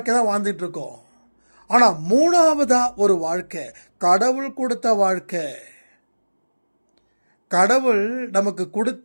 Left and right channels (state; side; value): inverted; both; correlation -1.00